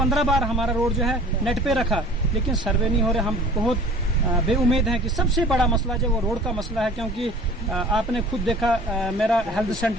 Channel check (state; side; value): normal; both; correlation 0.47